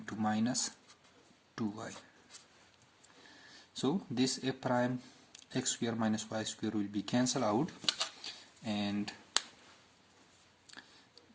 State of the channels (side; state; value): both; identical; correlation 1.00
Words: minus 2y. So this f prime x square minus y square will be cancelled out, and